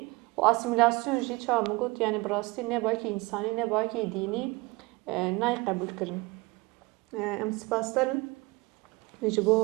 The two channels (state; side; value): quieter; left; 23.8 dB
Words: و آسیمیلاسیون جی چه میگوت یعنی براستی نه باید که انسانی نه باید که دینی نای قبول کردن ام سپاس دارم